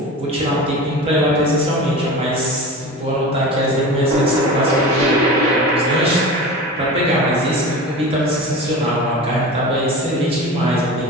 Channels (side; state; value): both; normal; correlation 0.32